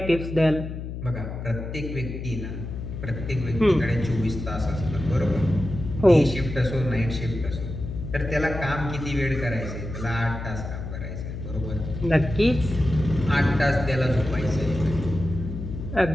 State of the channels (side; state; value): left; noise; hum, 7 dB below the sound